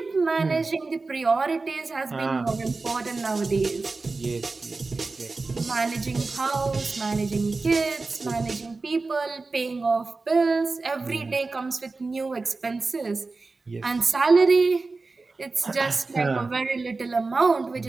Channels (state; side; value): quieter; left; 3.8 dB